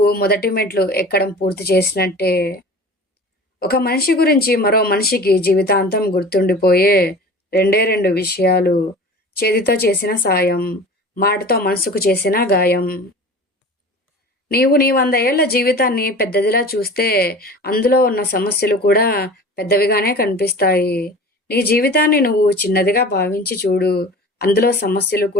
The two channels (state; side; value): normal; both; correlation 0.39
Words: మొదటి మెట్లు ఎక్కడం పూర్తి చేసినట్టే. ఒక మనిషి గురించి మరో మనిషికి జీవితాంతం గుర్తుండిపోయే రెండే రెండు విషయాలు: చేతితో చేసిన సాయం, మాటతో మనసుకు చేసిన గాయం. నీవు నీ 100 ఏళ్ల జీవితాన్ని పెద్దదిలా చూస్తే అందులో ఉన్న సమస్యలు కూడా పెద్దవిగానే కనిపిస్తాయి. నీ జీవితాన్ని నువ్వు చిన్నదిగా భావించి చూడు, అందులో సమస్యలు